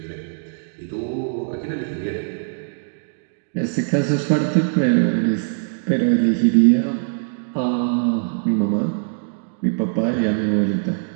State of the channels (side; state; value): left; silent; digital silence